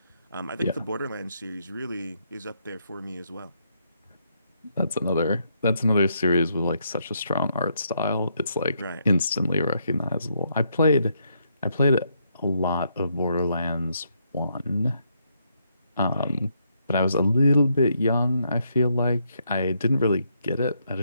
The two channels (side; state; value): both; inverted; correlation -0.76